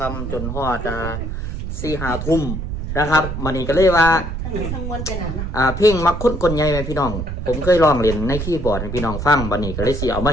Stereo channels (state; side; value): noise; right; rumble, 5 dB below the sound